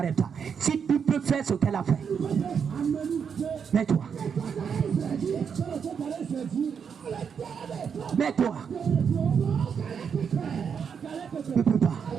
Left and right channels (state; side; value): quieter; left; 6.9 dB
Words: si tu peux faire ce qu'elle a fait, mets-toi. Mets-toi. Tu ne peux pas.